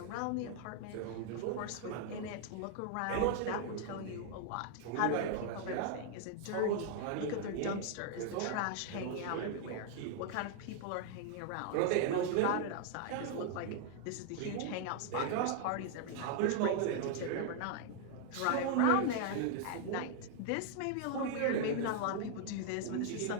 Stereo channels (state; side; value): different; both; correlation 0.00